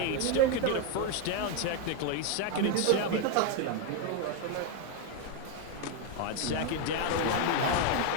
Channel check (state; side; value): different; both; correlation 0.01